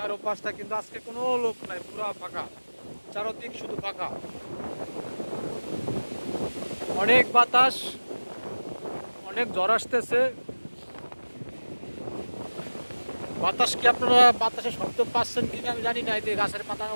কিন্তু আজকে কোনো লোক নাই, পুরো ফাঁকা, চারোদিক শুধু ফাঁকা। অনেক বাতাস, অনেক জ্বর আসতেছে। বাতাস কি আপনারা বাতাসের শব্দ পাচ্ছেন কিনা আমি জানি না। এই যে গাছের পাতার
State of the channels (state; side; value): inverted; both; correlation -1.00